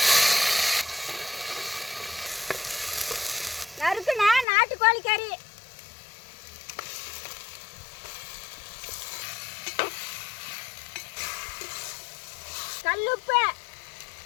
நறுக்குன நாட்டுக்கோழி கறி, கல்லுப்பு,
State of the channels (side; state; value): right; drops out; at 4.5 s